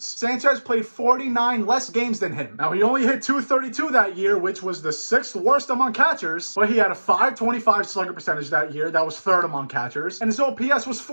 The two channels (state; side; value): inverted; both; correlation -1.00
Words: Sanchez played 49 less games than him. Now, he only hit .232 that year, which was the 6th worst among catchers, but he had a .525 slugger percentage that year. That was 3rd among catchers, and his OPS was